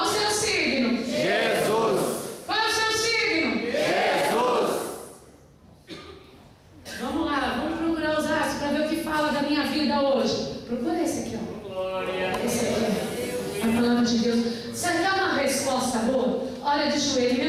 o seu signo? Jesus. Qual é o seu signo? Jesus. Vamos lá, vamos procurar os astros para ver o que fala da minha vida hoje. Procura esse aqui, ó. Esse aqui, a palavra de Deus. Você quer uma resposta boa? Olha de joelho, em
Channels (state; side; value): identical; both; correlation 1.00